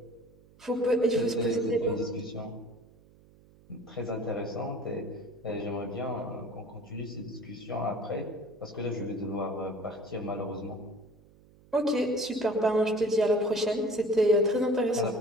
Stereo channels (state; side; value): noise; right; hum, 26 dB below the sound